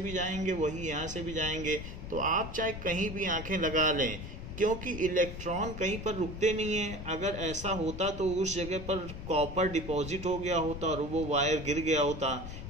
जाएंगे, वही यहाँ से भी जाएंगे. तो आप चाहे कहीं भी आंखें लगा लें, क्योंकि इलेक्ट्रॉन कहीं पर रुकते नहीं है. अगर ऐसा होता तो उस जगह पर कॉपर डिपॉजिट हो गया होता और वो वायर गिर गया होता.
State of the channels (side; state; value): left; noise; rumble, 9 dB below the sound